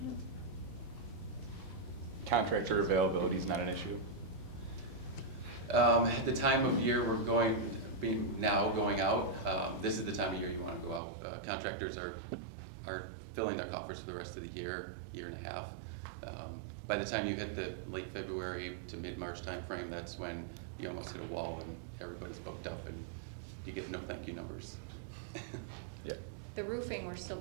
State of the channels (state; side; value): drops out; left; at 11.0 s